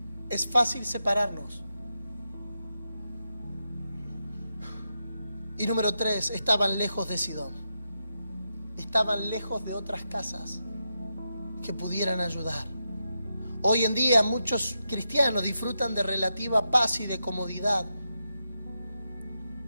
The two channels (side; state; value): both; inverted; correlation -0.86